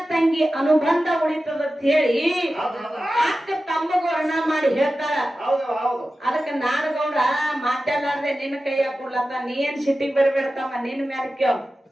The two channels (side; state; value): both; normal; correlation 0.94